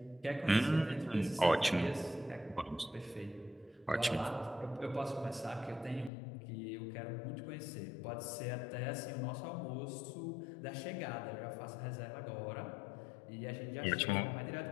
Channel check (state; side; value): drops out; right; at 6.1 s